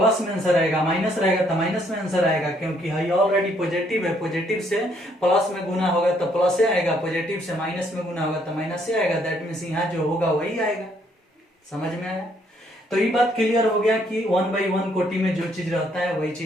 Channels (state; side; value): normal; both; correlation 0.68